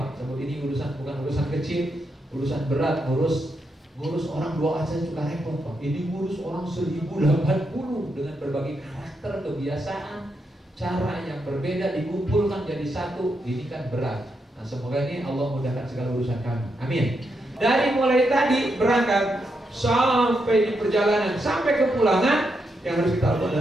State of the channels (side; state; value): both; normal; correlation 0.82